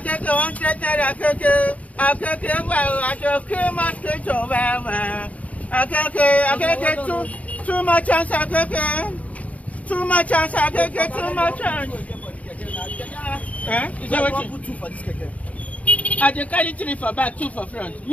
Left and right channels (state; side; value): late; right; 0.068 ms